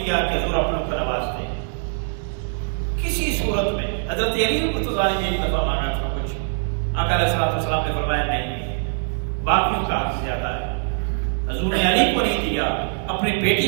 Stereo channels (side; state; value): left; silent; digital silence